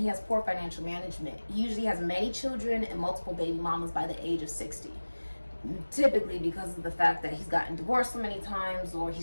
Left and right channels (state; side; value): inverted; both; correlation -1.00